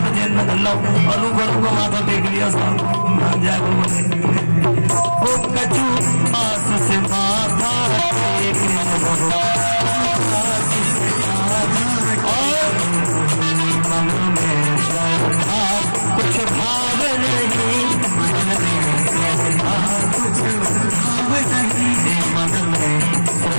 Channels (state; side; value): inverted; both; correlation -1.00